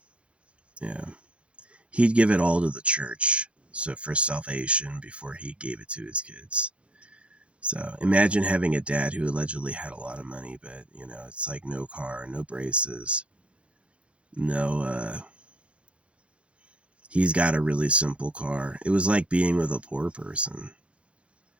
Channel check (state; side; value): late; left; 0.060 ms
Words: yeah. He'd give it all to the church. So for salvation before he gave it to his kids. So imagine having a dad who allegedly had a lot of money, but you know, it's like no car, no braces, no he's got a really simple car. It was like being with a poor person.